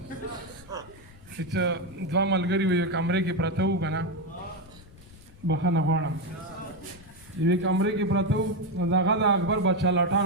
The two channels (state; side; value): noise; left; rumble, 22 dB below the sound